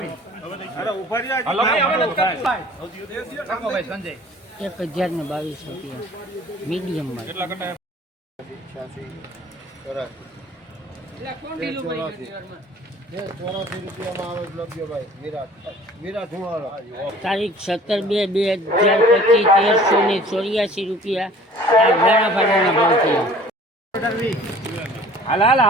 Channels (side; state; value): both; normal; correlation 0.49